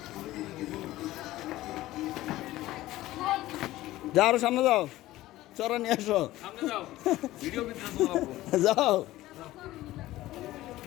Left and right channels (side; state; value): right; quieter; 16.3 dB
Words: যাও আরো সামনে যাও চড়া নিয়ে আসো যাও